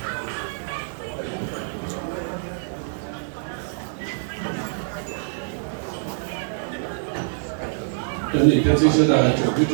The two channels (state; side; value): silent; left; digital silence